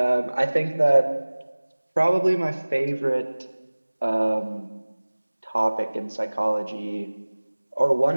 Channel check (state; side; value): inverted; both; correlation -1.00